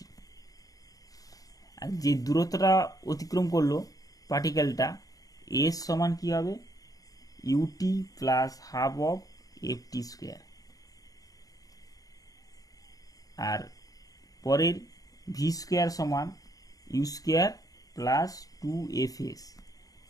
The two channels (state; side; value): late; right; 0.17 ms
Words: আর যে দূরত্বটা অতিক্রম করলো পার্টিকেলটা, এস সমান কী হবে, u t plus half of f t square. আর পরের ভি স্কোয়ার সমান u square plus 2 f s.